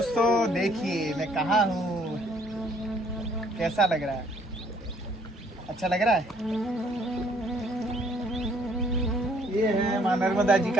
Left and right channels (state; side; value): normal; both; correlation 0.63